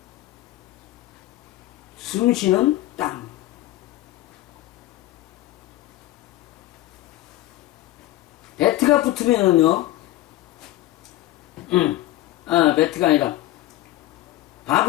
숨 쉬는 땅. 베트가 붙으면은요, 베트가 아니라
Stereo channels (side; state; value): right; quieter; 15.8 dB